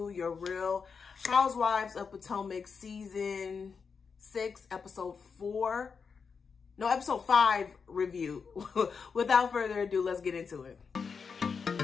your Real Housewives of Potomac season 6, episode 5 review. Without further ado, let's get into it.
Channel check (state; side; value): quieter; right; 5.6 dB